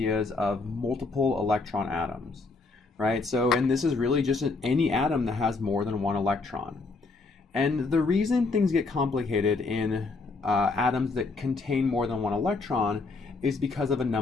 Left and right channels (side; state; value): right; quieter; 3.8 dB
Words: of multiple electron atoms, right? And this is really just any atom that has more than one electron. And the reason things get complicated in atoms that contain more than one electron is because of a